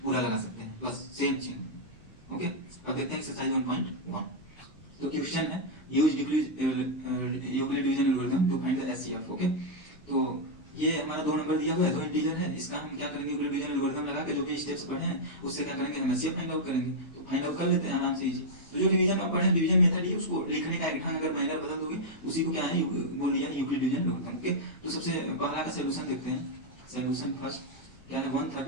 पूरा लगा सकते हैं, बस सेम चीज। ओके, अब देखते हैं एक्सरसाइज 1.1। तो क्वेश्चन है use Euclid division algorithm to find the HCF. Okay, तो ये हमारा 2 नंबर दिया हुआ है, 2 इंटीजर है, इसका हम क्या करेंगे, यूक्लिड डिवीजन एल्गोरिथम लगा के जो भी स्टेप्स पढ़े हैं उससे क्या करेंगे, हम एचसीएफ फाइंड आउट करेंगे। तो फाइंड आउट कर लेते हैं आराम से, इजी। तो जो डिवीजन आप पढ़े, डिवीजन मेथड है, उसको लिखने का एक ढंग अगर माइनर बदल दोगे उसी को क्या है बोल दिया यूक्लिड डिवीजन एल्गोरिथम। ओके, तो सबसे पहला का सॉल्यूशन देखते हैं। सॉल्यूशन फर्स्ट क्या है,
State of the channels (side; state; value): right; late; 4.7 ms